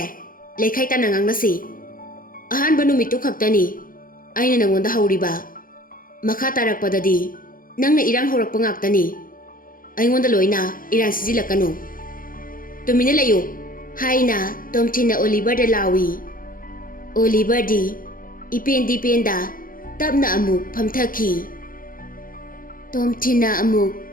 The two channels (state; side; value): late; right; 0.41 ms